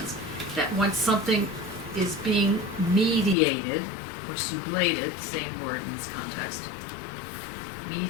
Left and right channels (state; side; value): drops out; right; at 3.4 s